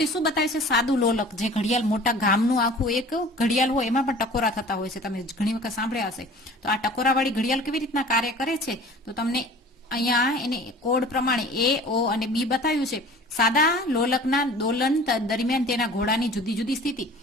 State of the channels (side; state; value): both; normal; correlation 0.45